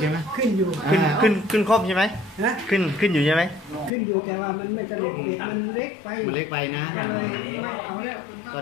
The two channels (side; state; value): right; drops out; at 3.9 s